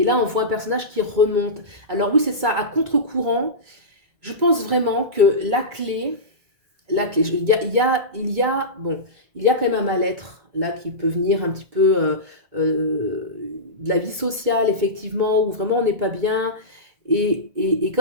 là, on voit un personnage qui remonte. Alors oui, c'est ça, à contre-courant. Je pense vraiment que bon, il y a quand même un mal-être là qui peut venir un petit peu de la vie sociale, effectivement, où vraiment on n'est pas bien. Et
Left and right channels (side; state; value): left; late; 1.9 ms